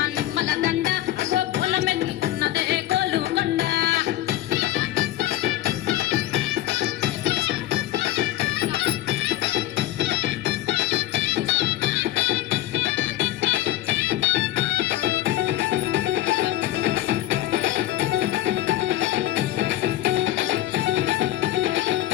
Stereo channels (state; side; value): quieter; right; 14.5 dB